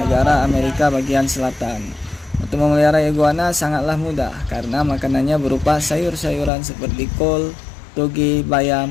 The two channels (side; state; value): right; drops out; at 6.5 s